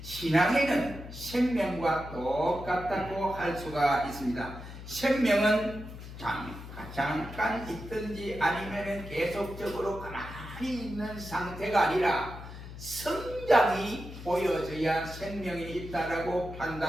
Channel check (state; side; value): noise; left; hum, 12 dB below the sound